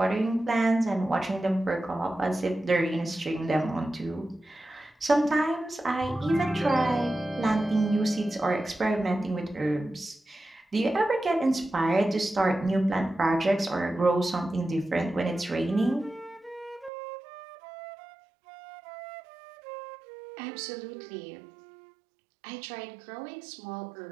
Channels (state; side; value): drops out; left; at 16.9 s